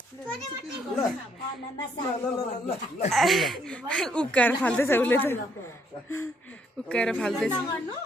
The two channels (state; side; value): normal; both; correlation 0.69